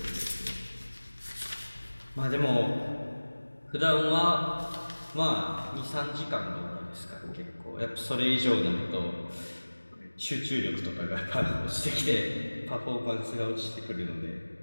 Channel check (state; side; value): inverted; both; correlation -1.00